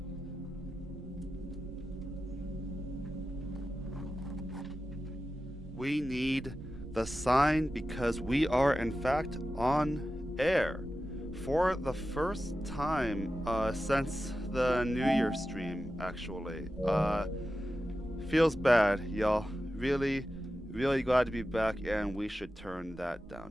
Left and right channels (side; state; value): both; normal; correlation 0.92